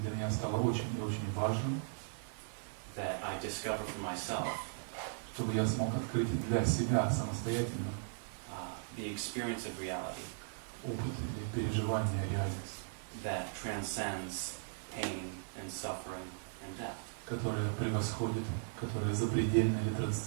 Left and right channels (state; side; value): silent; left; digital silence